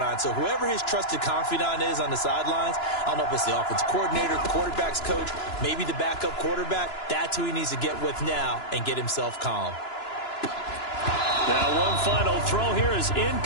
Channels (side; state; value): right; late; 2.9 ms